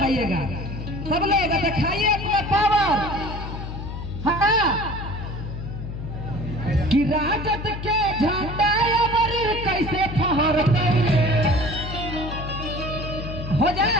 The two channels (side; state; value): left; noise; hum, 7 dB below the sound